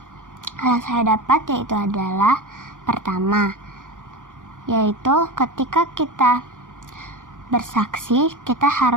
hal yang saya dapat yaitu adalah pertama, yaitu ketika kita bersaksi, kita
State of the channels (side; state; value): left; late; 0.87 ms